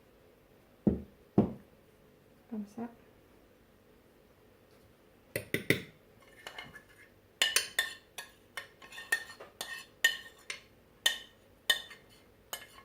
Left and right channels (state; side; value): identical; both; correlation 1.00